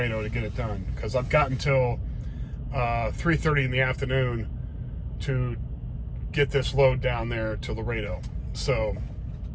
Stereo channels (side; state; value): both; identical; correlation 1.00